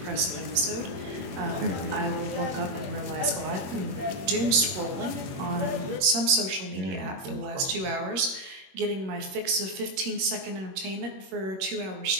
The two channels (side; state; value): left; late; 21 ms